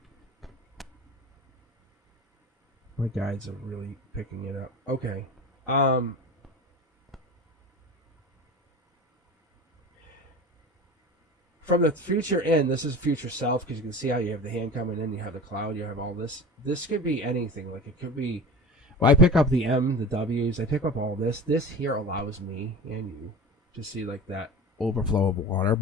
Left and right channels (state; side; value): normal; both; correlation 0.33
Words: My guides are really picking it up. Okay. From the future in, this is future self, because you can see how you have the hand coming in, you have the cloud, you have all this. This could be anything. Like, it could be, well, I pick up the M, the W's, I pick up all this. This here allows me and you to see, like, that overflow of water,